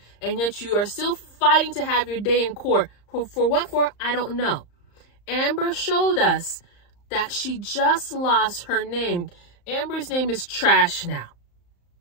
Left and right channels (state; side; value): late; right; 35 ms